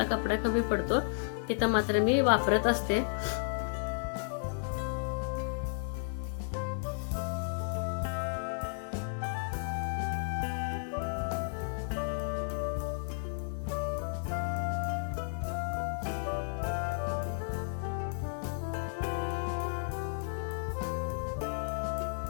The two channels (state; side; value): silent; right; 56 dB below the other